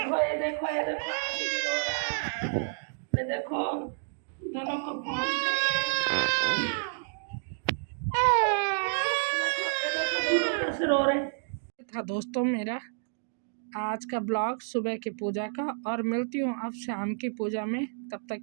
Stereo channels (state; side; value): silent; left; digital silence